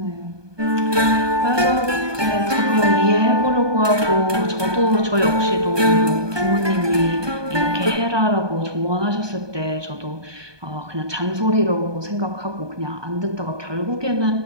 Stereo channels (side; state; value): left; late; 1.2 ms